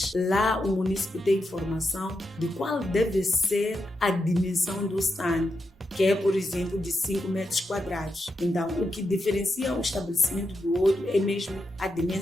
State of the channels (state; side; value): normal; both; correlation 0.86